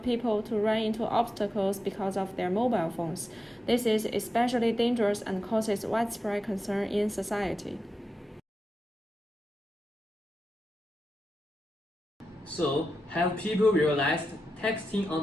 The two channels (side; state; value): both; normal; correlation 0.91